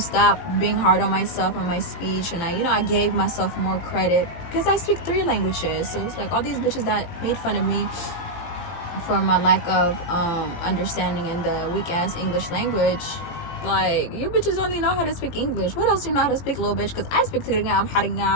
being hard on myself and my speech. And I gave myself more credit because I speak 3 languages. So it's like all these bitches that made fun of me for my lack of understanding in the weak ass English language. Like, you bitches only know how to speak English. What else do you know how to speak, little bitch? Because I speak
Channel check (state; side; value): late; right; 18 ms